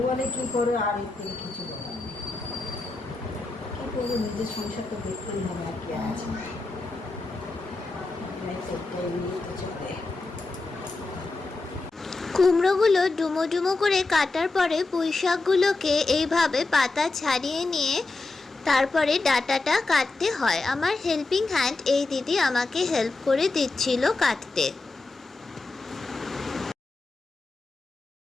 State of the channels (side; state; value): right; quieter; 3.4 dB